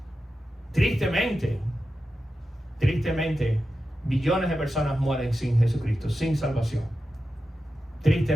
tristemente, billones de personas mueren sin Jesucristo, sin salvación.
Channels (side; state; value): both; normal; correlation 0.91